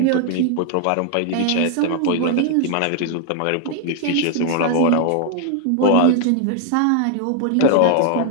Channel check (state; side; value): different; both; correlation 0.00